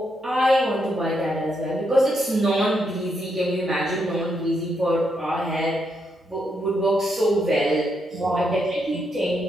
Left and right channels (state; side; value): normal; both; correlation 0.79